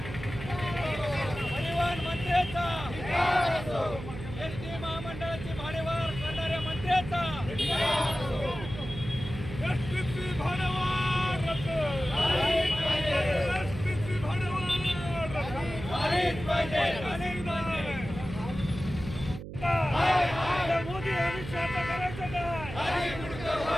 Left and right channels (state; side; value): noise; right; hum, 10 dB below the sound